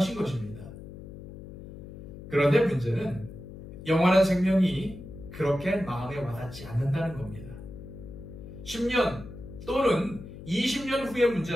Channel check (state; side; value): noise; left; hum, 14 dB below the sound